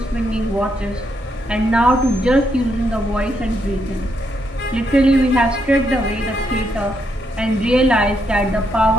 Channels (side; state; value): both; normal; correlation 0.78